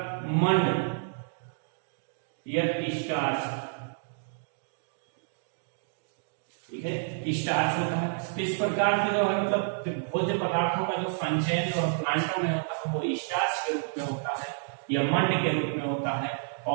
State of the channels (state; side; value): silent; left; digital silence